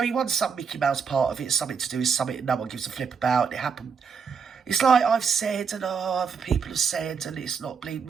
he won some Mickey Mouse part of it. Something to do with something no one gives a flip about. It happened. It's like I've said and other people have said, and it's not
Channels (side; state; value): left; quieter; 6.1 dB